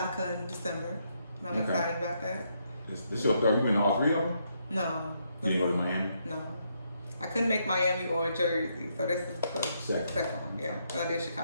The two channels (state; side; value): inverted; both; correlation -0.76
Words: in December. I'm excited about that. This is your third. You been all three of them? No. You didn't go to Miami? No. I couldn't make Miami or Jersey, so this is the second one. Yeah, so I did